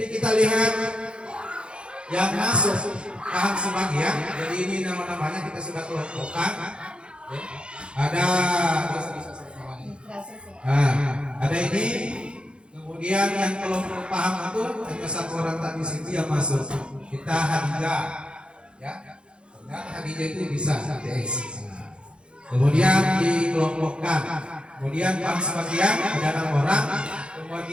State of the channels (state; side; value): late; left; 0.055 ms